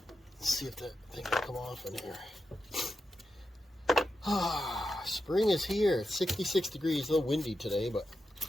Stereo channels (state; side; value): normal; both; correlation 0.88